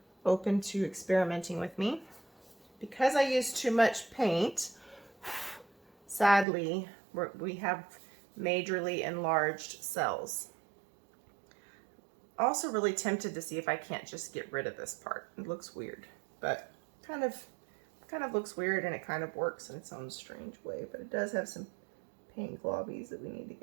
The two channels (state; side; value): drops out; left; at 6.5 s